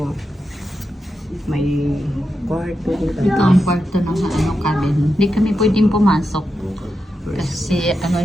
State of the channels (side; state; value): both; normal; correlation 0.88